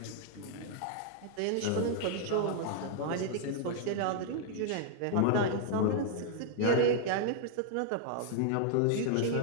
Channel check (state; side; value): different; both; correlation 0.00